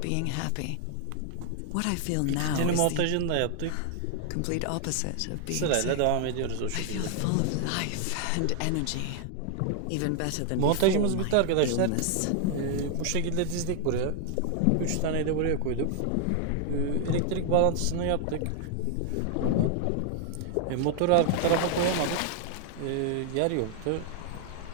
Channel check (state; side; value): different; both; correlation 0.00